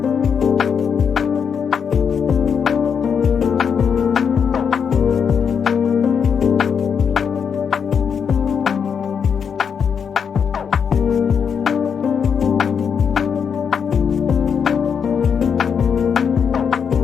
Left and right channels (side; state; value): right; quieter; 6.9 dB